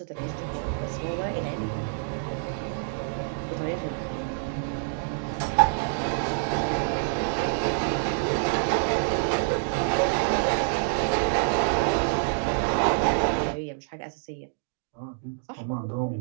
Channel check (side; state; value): left; silent; digital silence